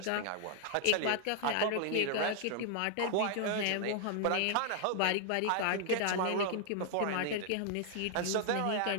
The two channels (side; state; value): both; different; correlation 0.00